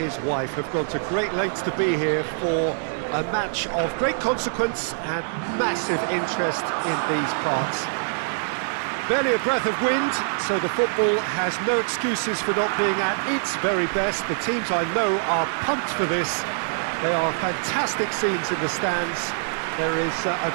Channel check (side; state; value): left; silent; digital silence